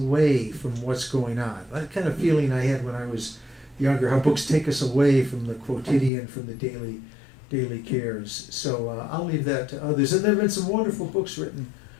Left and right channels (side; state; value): right; drops out; at 6.1 s